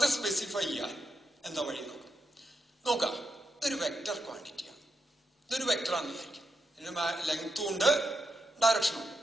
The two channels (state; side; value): normal; both; correlation 0.85